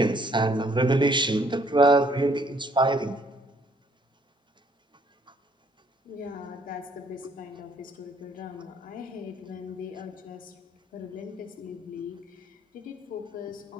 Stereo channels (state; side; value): normal; both; correlation 0.64